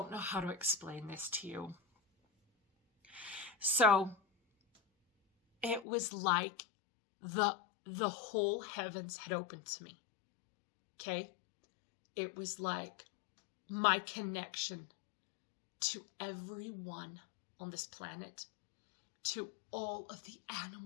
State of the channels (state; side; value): drops out; right; at 5.9 s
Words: know how to explain this to you. So it was like the whole heavens had opened to me. Okay? It was like my connection to everyone on this planet, to all of the